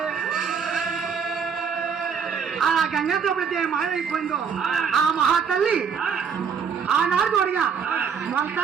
ఆ గంగతో ఎప్పుడైతే మాయమైపోయిందో ఆ మహాతల్లి ఆనాడు చూడగా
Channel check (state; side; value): quieter; left; 6.6 dB